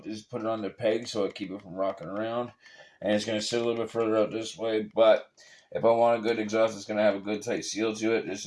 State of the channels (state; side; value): identical; both; correlation 1.00